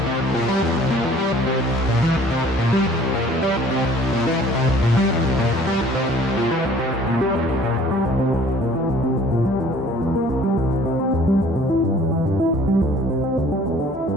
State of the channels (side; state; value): both; normal; correlation 0.53